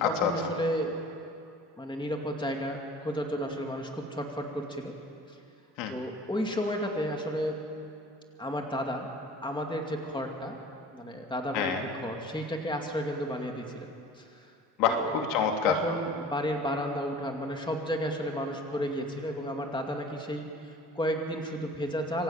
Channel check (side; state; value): both; normal; correlation 0.45